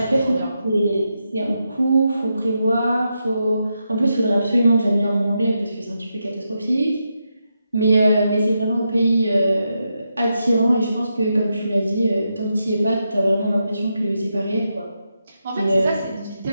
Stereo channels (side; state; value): both; inverted; correlation -0.85